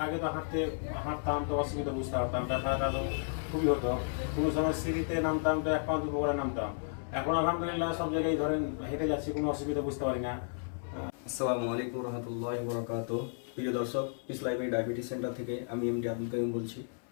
আগে তো হাঁটতাম তো অসুবিধা বুঝতে পারতাম, রাস্তাটা তো খুবই হতো, কোনো সময় সিঁড়িতে নামতাম তো 1 পা 2 পা করে নামতাম। এখন আলহামদুলিল্লাহ সব জায়গায় ধরেন হেঁটে যাচ্ছি, কোনো অসুবিধা বুঝতে পারি না। আসসালামু আলাইকুম রহমতুল্লাহি ওয়া বারাকাতুহু। প্রিয় দর্শক, পিস লাইব্রেরি ডায়াবেটিস সেন্টার থেকে আমি এমডি আব্দুল কাইম বলছি।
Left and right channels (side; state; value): right; silent; 56 dB below the other